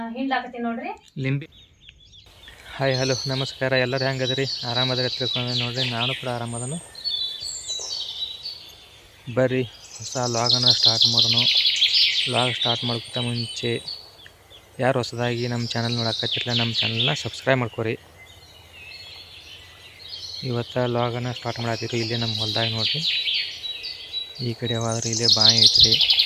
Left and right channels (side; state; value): both; identical; correlation 1.00